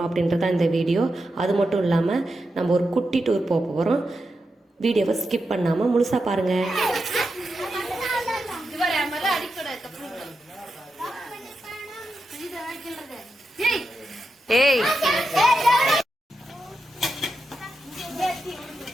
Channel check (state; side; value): normal; both; correlation 0.88